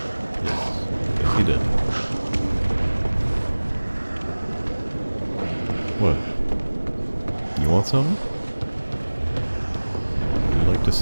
Yes. Yes, he did. What? You want something? Would you like to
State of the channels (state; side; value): inverted; both; correlation -1.00